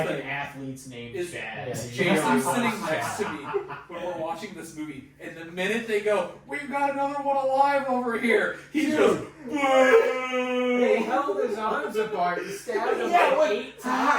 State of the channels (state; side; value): identical; both; correlation 1.00